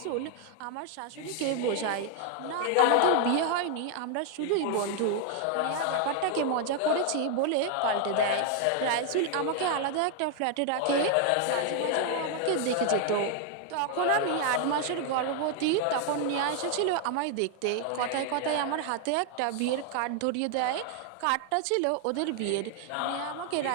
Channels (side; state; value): both; different; correlation 0.00